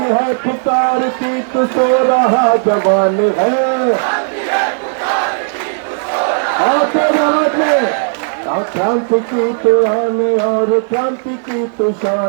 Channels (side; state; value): left; silent; digital silence